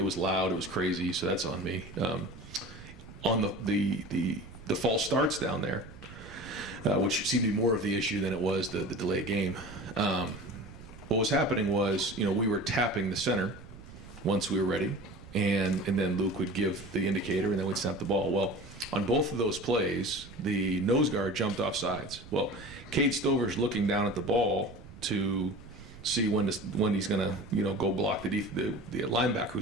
was loud, it was crazy, so that's on me. On the false starts down there, which seemed to be more of the issue than it was the delayed game. What was happening was, you know, we were tapping the center once we were ready, and then Luke would give the indicator, and then we'd snap the ball. Well, on both of those plays, the nose guard jumped off sides. Well, Cade Stover's looking down at the ball to see when he's going to, you know, go block the linebacker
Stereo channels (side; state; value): right; noise; rumble, 17 dB below the sound